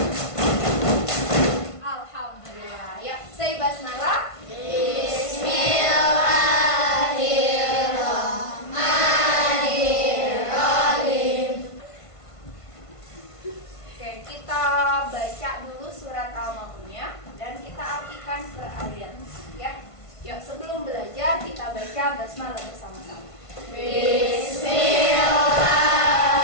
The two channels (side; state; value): right; late; 1.5 ms